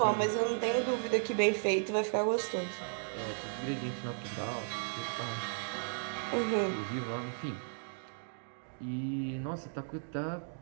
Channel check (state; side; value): silent; left; digital silence